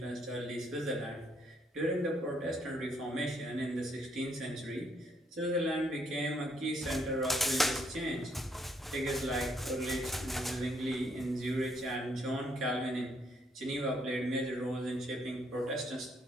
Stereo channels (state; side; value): normal; both; correlation 0.71